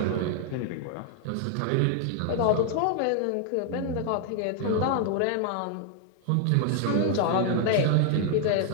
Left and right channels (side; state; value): both; different; correlation 0.00